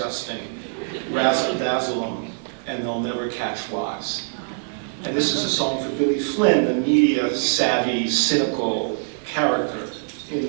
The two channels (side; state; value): left; silent; digital silence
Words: Razzle dazzle them, and they'll never catch wise. And this is a song for Billy Flynn, the media-savvy, cynical character in